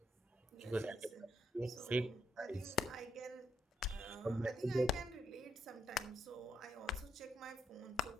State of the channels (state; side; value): normal; both; correlation 0.78